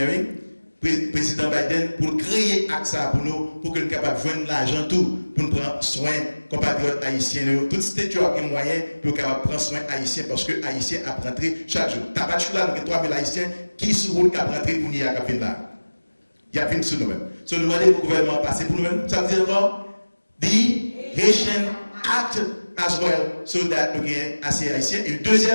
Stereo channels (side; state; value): both; inverted; correlation -1.00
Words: président Biden, pour créer AXA pour nous, pour que nous soyons capables de joindre l'argent tout, pour nous prendre soin compatriotes haïtiens. Tout ce qui a moyen pour prendre soin haïtiens, parce que haïtiens a rentré chaque jour. Tabac là, nous avons 3000 haïtiens qui sont route qui a rentré pour nous à là. Il y a plus sur nous-mêmes. So nous demandons au gouvernement passer pour nous-mêmes. Ça veut dire quoi? The Haitian Act as well, so that nous avons assez haïtiens. Et